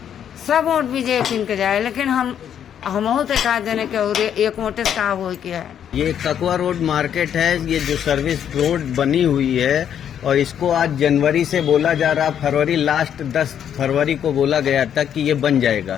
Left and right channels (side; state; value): right; quieter; 9.1 dB